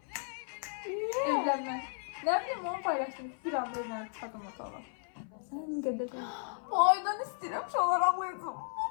Evlenme. Ne bileyim onu paylaştım. Bir anda evlenip çıkardım motorla. Sən qədər Bu aydan istedim şu olarak alıyorum.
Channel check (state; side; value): silent; right; 55 dB below the other